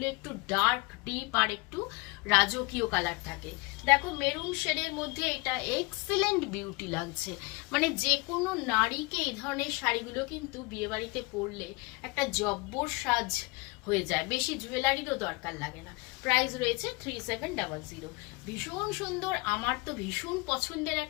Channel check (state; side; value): quieter; right; 26.1 dB